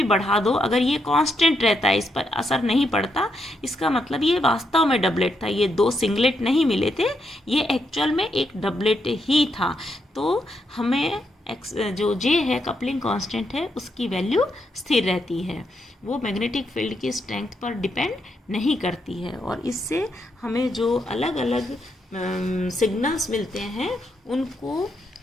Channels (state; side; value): normal; both; correlation 0.80